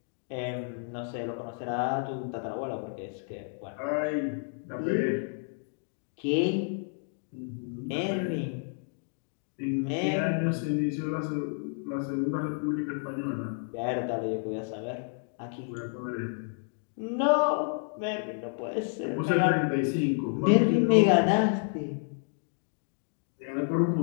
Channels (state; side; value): silent; right; 58 dB below the other